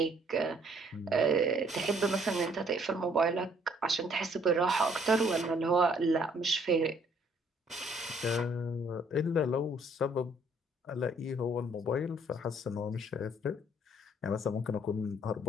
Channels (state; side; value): normal; both; correlation 0.63